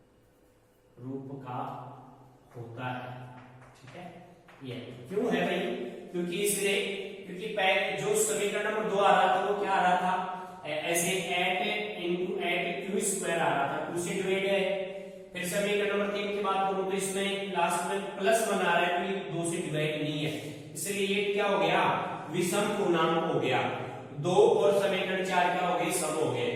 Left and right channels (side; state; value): both; identical; correlation 1.00